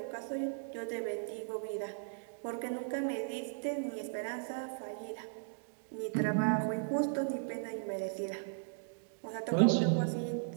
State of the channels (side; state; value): left; silent; digital silence